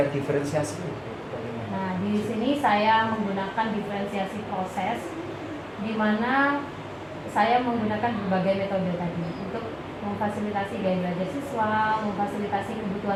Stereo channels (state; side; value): identical; both; correlation 1.00